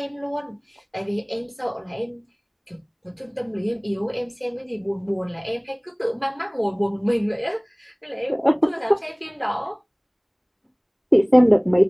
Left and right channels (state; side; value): identical; both; correlation 1.00